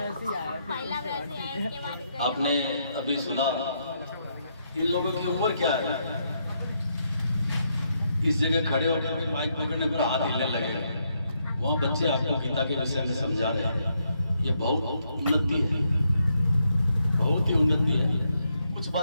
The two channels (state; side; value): inverted; both; correlation -0.78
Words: पहला वैसे आया, इसके बाद गजब। आपने अभी सुना, इन लोगों की उम्र क्या है? इस जगह खड़े होकर भी माइक पकड़ने पर हाथ हिलने लगे, वहाँ बच्चे आपको गीता के विषय में समझा रहे हैं। ये बहुत उन्नति है, बहुत ही उन्नति है। कुछ